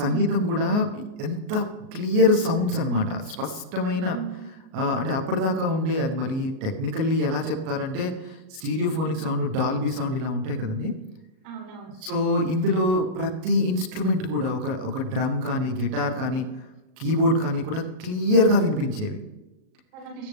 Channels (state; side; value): late; left; 38 ms